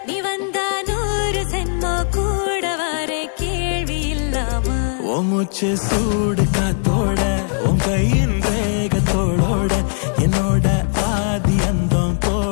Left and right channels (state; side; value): silent; right; digital silence